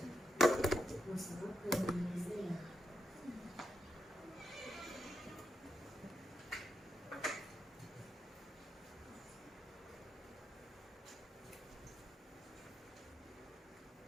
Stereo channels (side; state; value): both; normal; correlation 0.84